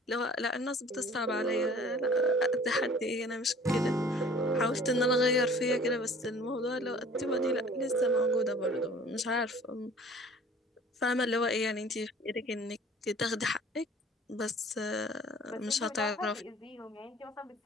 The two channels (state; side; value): normal; both; correlation 0.49